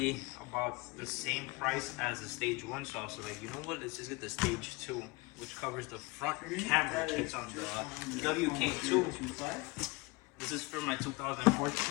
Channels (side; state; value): right; quieter; 25.0 dB